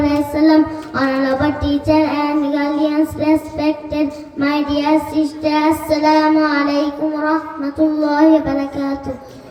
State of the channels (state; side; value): identical; both; correlation 1.00